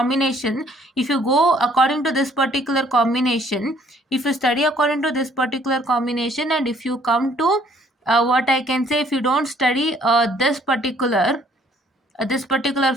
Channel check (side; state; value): both; normal; correlation 0.62